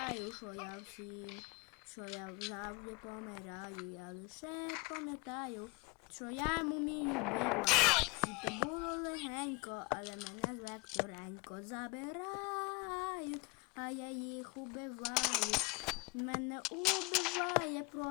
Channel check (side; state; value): right; quieter; 28.4 dB